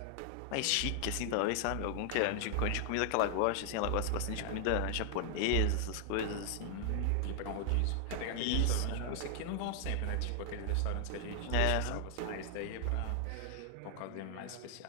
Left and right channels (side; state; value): both; different; correlation 0.00